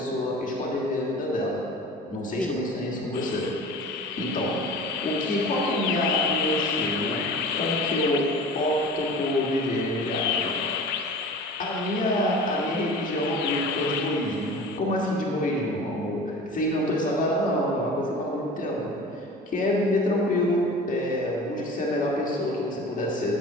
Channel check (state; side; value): normal; both; correlation 0.39